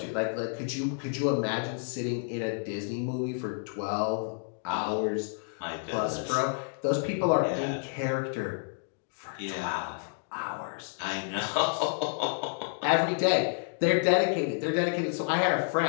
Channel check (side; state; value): right; silent; digital silence